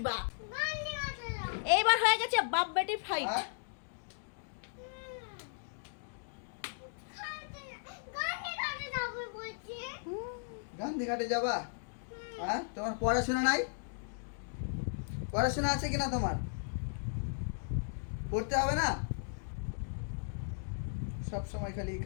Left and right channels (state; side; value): silent; right; digital silence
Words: এইবার হয়ে গেছে বাপ বেটি ফাইট। হ্যাঁ? গান্ধীঘাটে যাবা? হ্যাঁ, তোমার পড়াশোনা নাই? পড়াশোনা আছে কিনা তোমার? পড়তে হবে না? সব সময় খালি